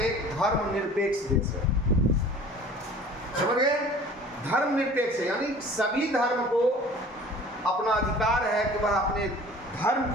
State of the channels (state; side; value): normal; both; correlation 0.46